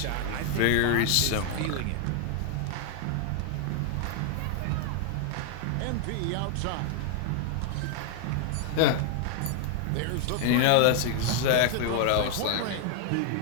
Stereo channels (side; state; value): both; different; correlation 0.00